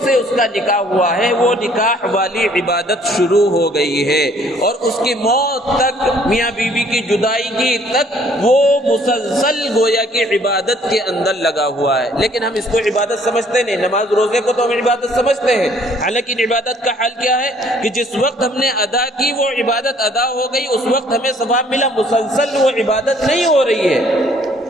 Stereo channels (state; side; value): normal; both; correlation 0.60